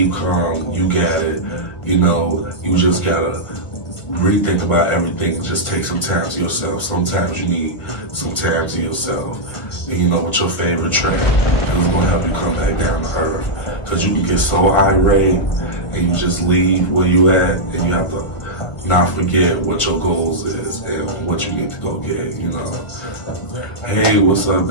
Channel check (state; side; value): late; right; 1.4 ms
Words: calm. You got it. You just gotta rethink about everything. Just take some time to yourself. Sometimes you need some time to yourself. And with your favorite track, it's gonna help you come back down to earth. Because you can get so irate and you just leave where you at, and you have to not forget what your goals is and what you need to go get, Hey, what's up,